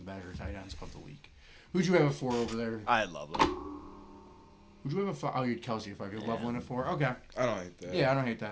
better tight ends of the league. Who'd you have a 4 over there? I love him. Who'd you have a 5? Oh, you had Kelsey a 5. You have Loveland a 4? Okay. I don't hate that. Yeah, I don't hate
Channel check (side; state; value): both; identical; correlation 1.00